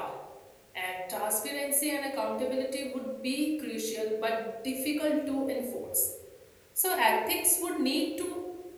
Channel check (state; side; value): identical; both; correlation 1.00